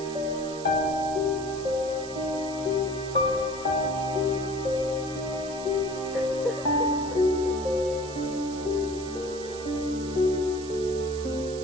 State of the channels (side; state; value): right; noise; hiss, 14 dB below the sound